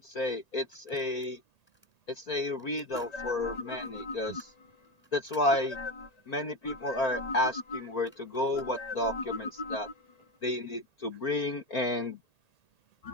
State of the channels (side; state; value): right; late; 1.8 ms